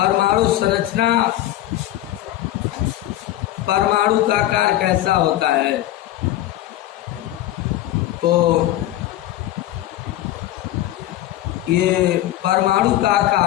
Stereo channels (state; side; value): quieter; right; 14.3 dB